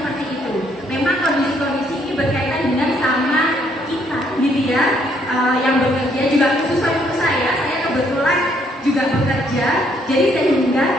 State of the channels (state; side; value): normal; both; correlation 0.69